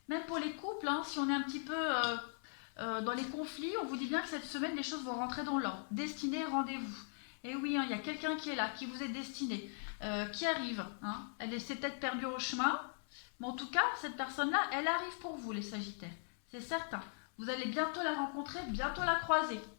Même pour les couples, hein, si on est un petit peu dans les conflits, on vous dit bien que cette semaine, les choses vont rentrer dans l'ordre. Destinée, rendez-vous. Et oui, hein, il y a quelqu'un qui est là, qui vous est destiné, qui arrive. Hein. Elle s'est peut-être perdue au chemin, mais en tout cas, cette personne-là, elle arrive pour vous, les Sagittaires. C'est certain. Vous allez bientôt la rencontrer, bientôt la croiser.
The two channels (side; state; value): right; silent; 51 dB below the other